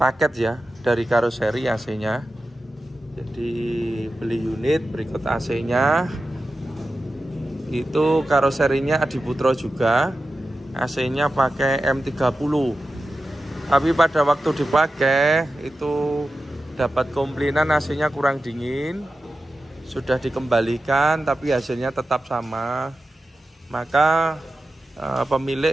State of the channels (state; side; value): normal; both; correlation 0.93